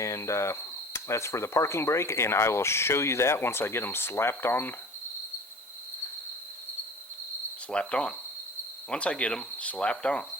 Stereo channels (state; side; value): normal; both; correlation 0.42